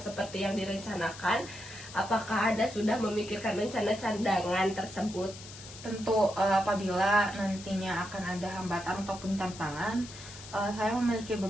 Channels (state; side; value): noise; left; hiss, 15 dB below the sound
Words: yang direncanakan, apakah Anda sudah memikirkan rencana cadangan tersebut? Tentu apabila nantinya akan ada hambatan ataupun tantangan, saya memiliki